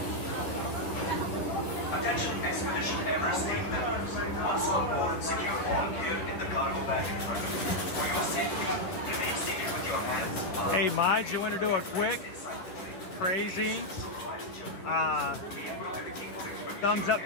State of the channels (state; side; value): late; right; 10 ms